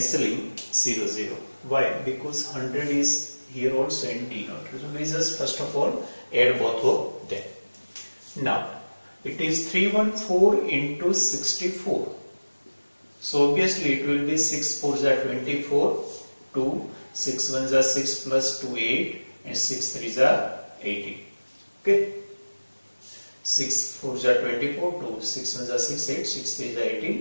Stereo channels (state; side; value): inverted; both; correlation -1.00